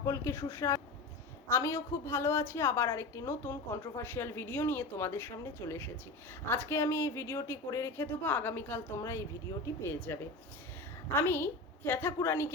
সুস্বাগত। আমিও খুব ভালো আছি। আবার আরেকটি নতুন কন্ট্রোভার্সিয়াল ভিডিও নিয়ে তোমাদের সামনে চলে এসেছি। আজকে আমি এই ভিডিওটি করে রেখে দেবো, আগামীকাল তোমরা এই ভিডিওটি পেয়ে যাবে। আমি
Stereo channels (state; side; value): quieter; right; 3.1 dB